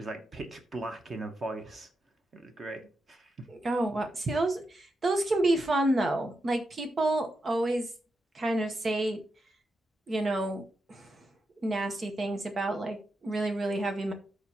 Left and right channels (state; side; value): normal; both; correlation 0.86